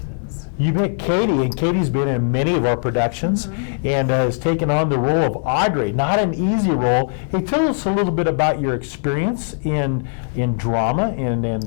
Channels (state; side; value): silent; right; digital silence